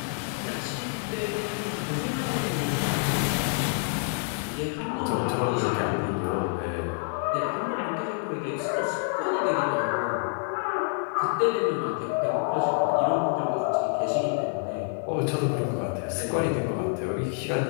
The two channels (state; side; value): silent; right; 60 dB below the other